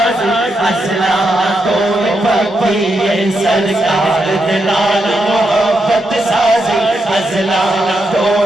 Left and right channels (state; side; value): normal; both; correlation 0.83